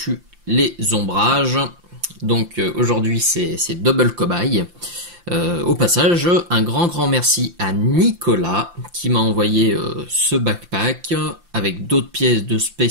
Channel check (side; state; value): left; late; 5.8 ms